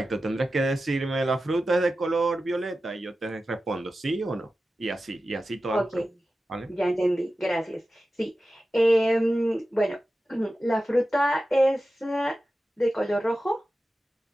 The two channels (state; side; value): normal; both; correlation 0.94